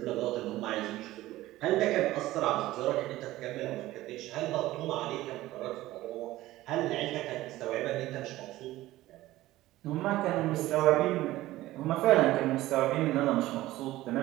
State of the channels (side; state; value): left; quieter; 16.5 dB